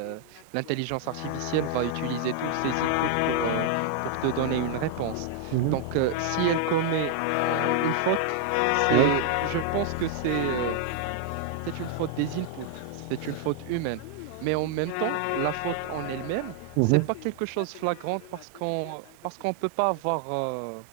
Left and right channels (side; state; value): both; different; correlation 0.00